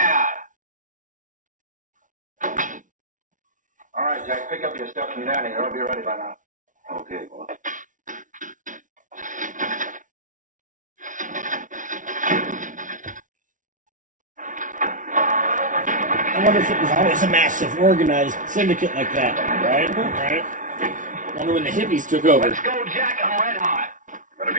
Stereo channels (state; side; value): late; left; 0.38 ms